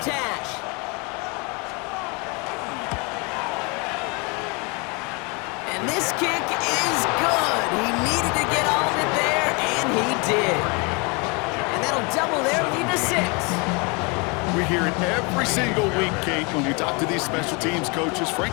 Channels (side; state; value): right; quieter; 30.4 dB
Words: hash. And this kick is good. He needed to get all of it there, and he did. And that'll double their lead to 6. We hear it every single week, Kate, when we talk to these special teams coaches,